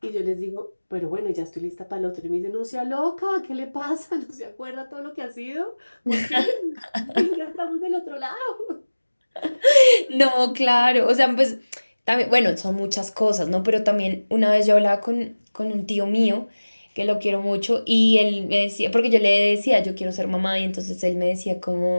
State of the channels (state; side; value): inverted; both; correlation -1.00